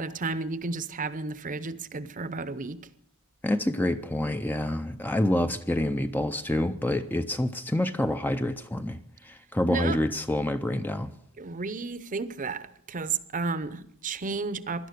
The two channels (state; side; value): normal; both; correlation 0.75